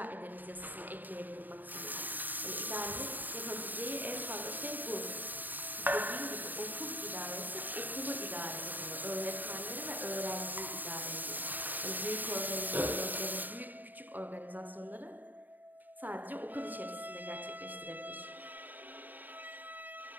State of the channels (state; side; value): late; left; 0.088 ms